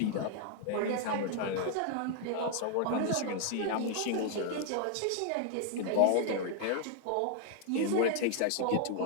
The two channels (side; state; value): both; different; correlation 0.00